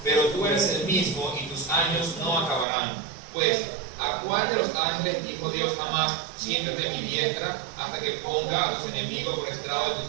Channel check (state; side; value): drops out; left; at 2.7 s